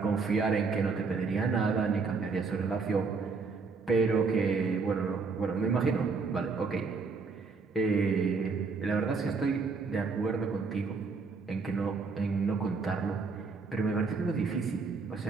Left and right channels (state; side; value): quieter; left; 4.6 dB